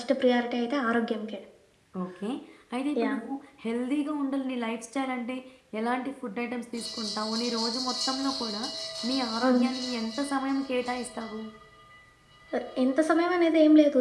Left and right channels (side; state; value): both; identical; correlation 1.00